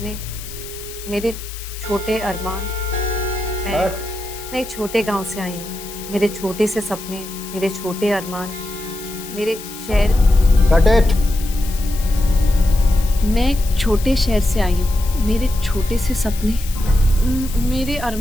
मेरे छोटे अरमान। मैं एक छोटे गांव से आई हूँ। मेरे छोटे से सपने, मेरे छोटे अरमान, मेरे शहर। Cut it. मैं एक छोटे शहर से आई हूँ। मेरे छोटे से सपने, मेरे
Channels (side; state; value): left; noise; hiss, 13 dB below the sound